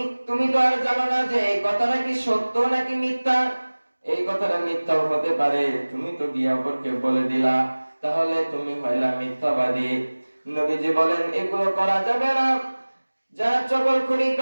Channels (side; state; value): both; inverted; correlation -1.00